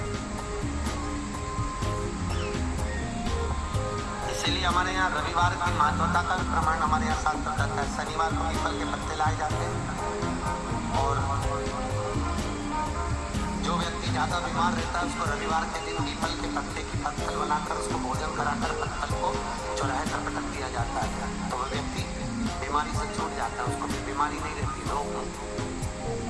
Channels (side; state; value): both; identical; correlation 1.00